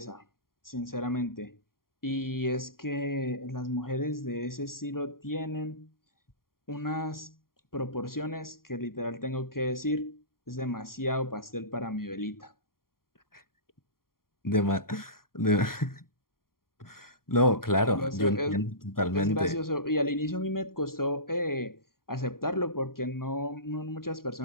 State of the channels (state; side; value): late; right; 0.92 ms